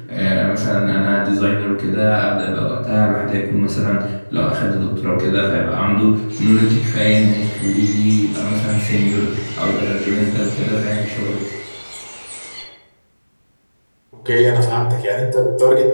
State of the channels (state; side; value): inverted; both; correlation -1.00